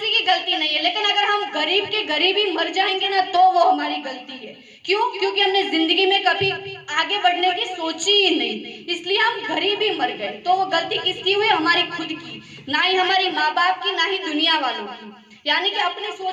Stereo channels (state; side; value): identical; both; correlation 1.00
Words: की गलती नहीं है, लेकिन अगर हम गरीब के गरीब ही मर जाएंगे ना तो वो हमारी गलती है। क्यों? क्योंकि हमने जिंदगी में कभी आगे बढ़ने की सोची ही नहीं, इसलिए हम गरीब ही मर गए। तो वो गलती किसकी हुई? हमारी खुद की, ना ही हमारी माँ बाप की, ना ही दुनिया वालों की। यानी कि अपनी